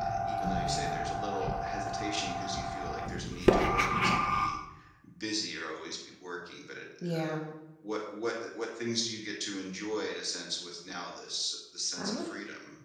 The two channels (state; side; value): identical; both; correlation 1.00